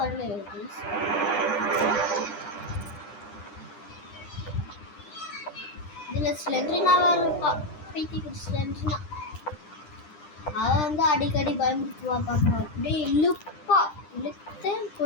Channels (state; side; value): late; right; 9.9 ms